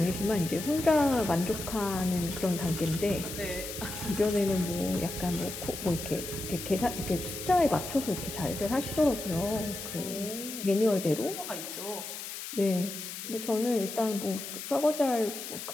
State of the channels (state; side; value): noise; left; hiss, 8 dB below the sound